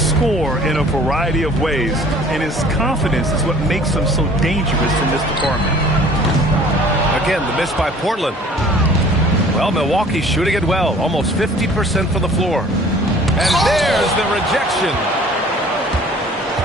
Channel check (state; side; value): normal; both; correlation 0.50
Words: in a variety of ways, and his confidence is what makes him so dangerous in this department. Again, the miss by Portland. Well, Milwaukee's shooting it well, almost 50% from the floor. And there's the rejection.